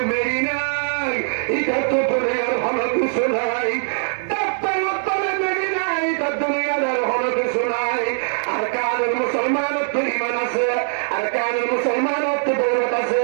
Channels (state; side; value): silent; left; 65 dB below the other